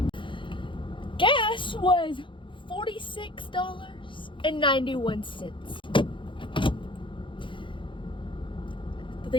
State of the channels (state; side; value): late; right; 0.24 ms